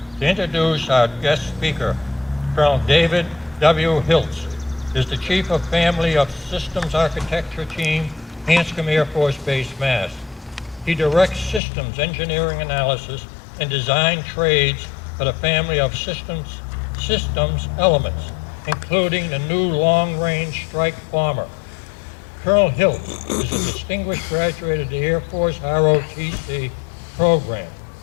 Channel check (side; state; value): right; drops out; at 11.6 s